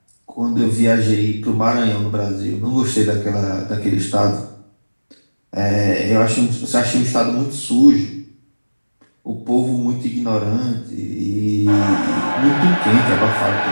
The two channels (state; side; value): inverted; both; correlation -1.00